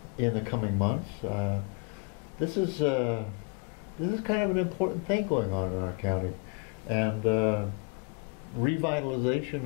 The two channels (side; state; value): right; quieter; 30.5 dB